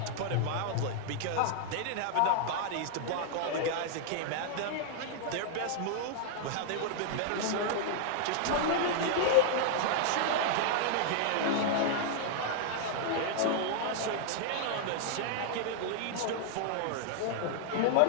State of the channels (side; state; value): both; different; correlation -0.01